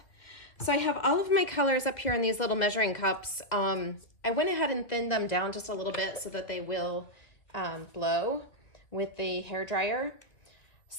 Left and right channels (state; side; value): late; right; 2.4 ms